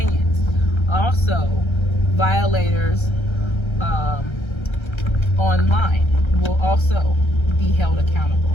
Also, violators online will also be held accountable.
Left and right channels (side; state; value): right; late; 1.3 ms